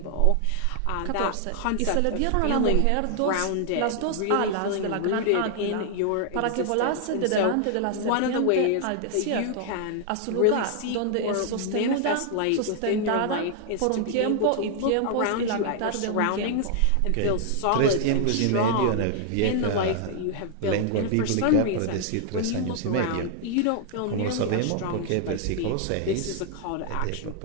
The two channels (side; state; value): both; different; correlation 0.00